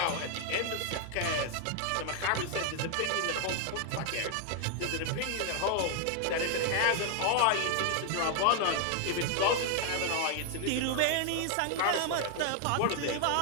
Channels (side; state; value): both; different; correlation 0.00